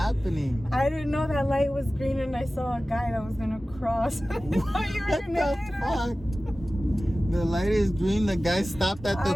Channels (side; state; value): both; normal; correlation 0.96